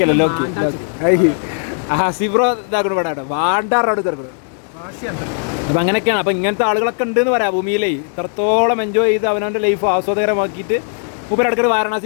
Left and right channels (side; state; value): right; silent; 63 dB below the other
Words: സിബ്രോ ഇതാക്കണം ഇവിടെ വാണ്ടാറോട് ചെറുക്കണം. അപ്പം അങ്ങനെയൊക്കെയാണ്. അപ്പം ഇങ്ങനത്തെ ആളുകളൊക്കെ ഉണ്ടെന്ന് പറയാം ഭൂമിയിലേ. ഇത്രത്തോളം എൻജോയ് ചെയ്ത് അവനവൻ്റെ ലൈഫ് ആസ്വാദകരമാക്കിയിട്ട് മൂപ്പര് ഇടയ്ക്ക്